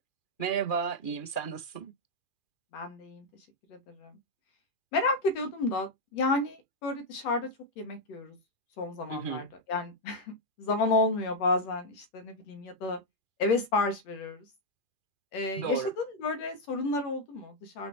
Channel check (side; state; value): right; late; 2.4 ms